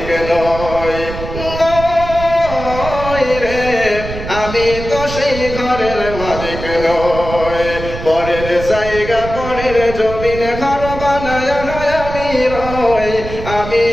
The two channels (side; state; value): right; noise; rumble, 9 dB below the sound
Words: নই, নই রে, আমি তো সেই ঘরের মালিক নই। পরের জায়গা পরের জমিন ঘর বানায় আমি রই, আমি